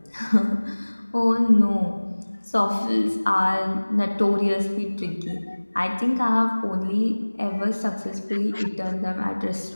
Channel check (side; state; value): both; inverted; correlation -1.00